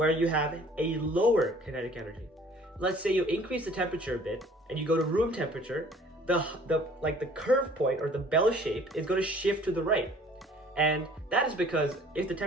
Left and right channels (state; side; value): normal; both; correlation 0.53